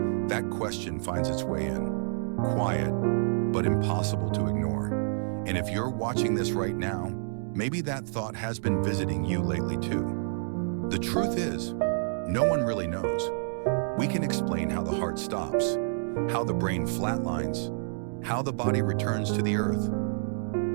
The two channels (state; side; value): silent; left; digital silence